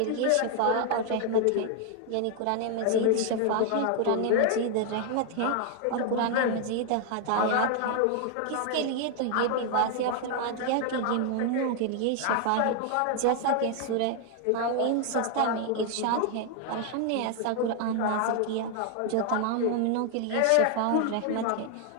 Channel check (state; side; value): different; both; correlation 0.00